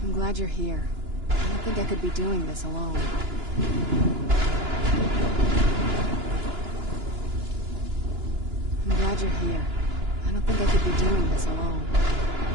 I'm glad you're here. I don't think I could be doing this alone. I'm glad you're here. I don't think I could be doing this alone.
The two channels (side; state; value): left; late; 2.9 ms